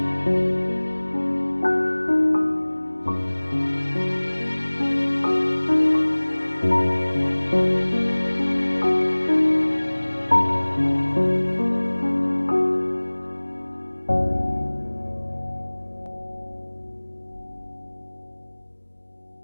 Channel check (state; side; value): inverted; both; correlation -1.00